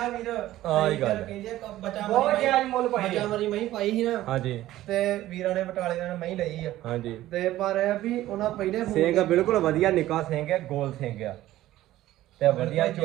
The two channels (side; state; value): left; quieter; 14.9 dB